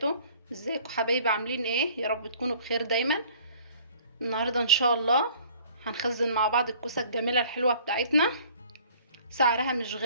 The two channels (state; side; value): inverted; both; correlation -0.53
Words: ازيكم حبايبي؟ عاملين ايه؟ يا رب تكونوا بخير دايما. النهاردة ان شاء الله هنخزن مع بعض الكوسة الجميلة الحلوة بتاعتنا. سعرها مش